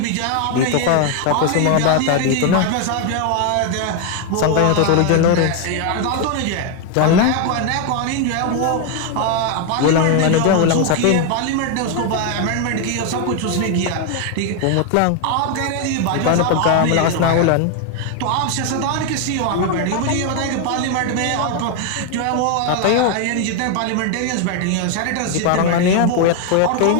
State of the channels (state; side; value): different; both; correlation 0.01